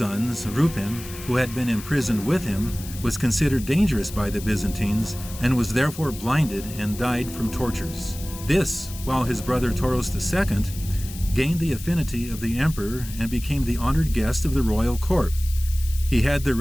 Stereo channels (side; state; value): left; noise; hiss, 14 dB below the sound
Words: Rupen, who had been imprisoned with him, was considered dangerous by the Byzantines and was therefore blinded and died from tortures. This, while his brother Toros II gained the affinity of the emperor and became the honored guest of the royal court. He had the